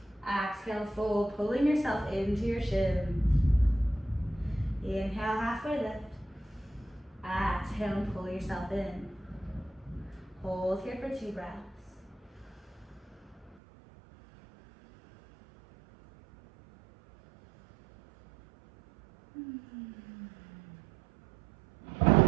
Exhale, fold, pulling yourself into your shins. Inhale, halfway lift. Exhale and pull yourself in. Hold here for 2 breaths.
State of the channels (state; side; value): drops out; left; at 13.6 s